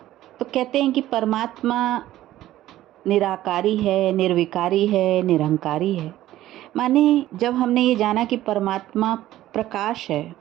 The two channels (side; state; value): left; quieter; 14.3 dB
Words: तो कहते हैं कि परमात्मा निराकारी है, निर्विकारी है, निरंकारी है। माने जब हमने ये जाना कि परमात्मा प्रकाश है,